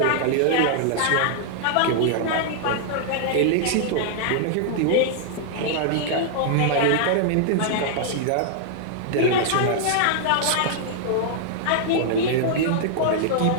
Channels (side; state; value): both; different; correlation -0.01